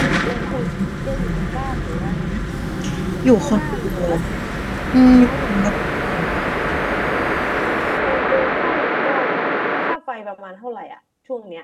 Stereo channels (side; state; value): both; identical; correlation 1.00